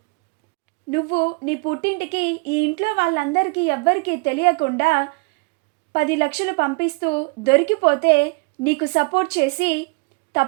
నువ్వు నీ పుట్టింటికి ఈ ఇంట్లో వాళ్ళందరికీ ఎవ్వరికీ తెలియకుండా 10 లక్షలు పంపిస్తూ దొరికిపోతే నీకు సపోర్ట్ చేసి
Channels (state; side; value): quieter; left; 30.0 dB